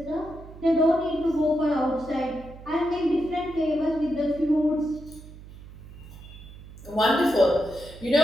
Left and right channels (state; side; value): noise; right; hum, 17 dB below the sound